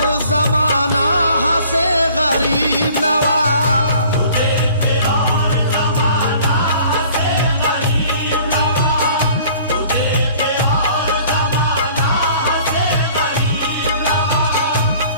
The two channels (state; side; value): inverted; both; correlation -0.52